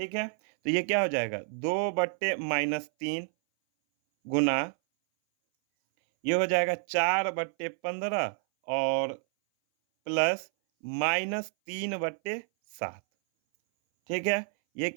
है, तो ये क्या हो जाएगा, 2/-3 गुना, ये हो जाएगा 4/15 और प्लस -3/7। ठीक है, ये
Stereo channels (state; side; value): silent; left; 58 dB below the other